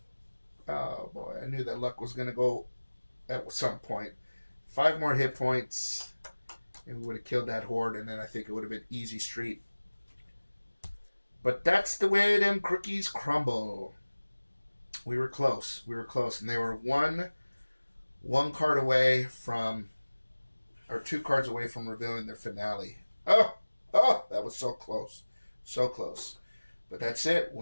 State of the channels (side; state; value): both; inverted; correlation -1.00